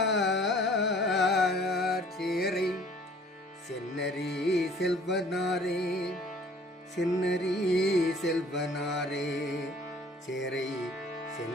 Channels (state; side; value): normal; both; correlation 0.54